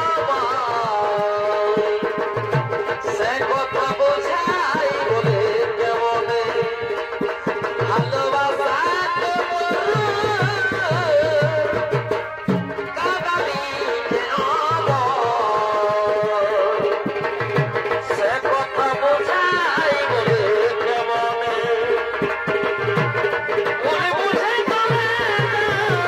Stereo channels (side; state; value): both; identical; correlation 1.00